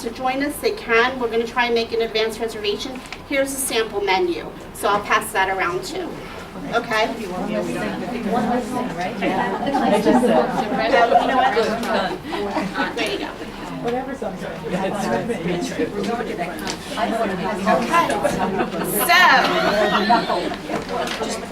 to join us, they can. We're going to try and make an advance reservation. Here's a sample menu, so I'll pass that around too. Okay? One last thing, right? There you go. Whatever sounds right.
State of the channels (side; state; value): both; identical; correlation 1.00